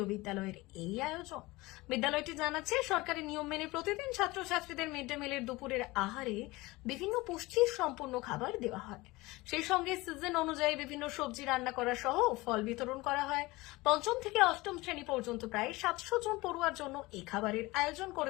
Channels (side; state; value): right; quieter; 21.3 dB